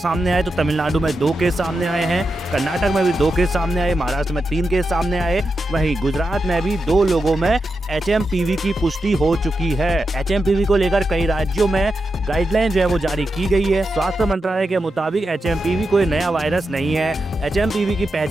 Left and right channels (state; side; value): normal; both; correlation 0.88